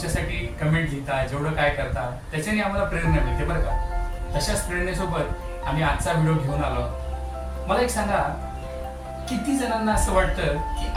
कमेंट लिहिता, जेवढं काय करता, त्याच्याने आम्हाला प्रेरणा मिळते बरं का. तशाच प्रेरणेसोबत आम्ही आजचा व्हिडिओ घेऊन आलो. मला एक सांगा, किती जणांना असं वाटतं की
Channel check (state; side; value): identical; both; correlation 1.00